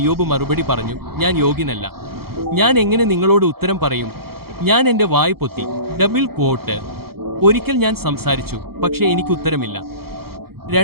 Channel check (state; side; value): late; left; 0.95 ms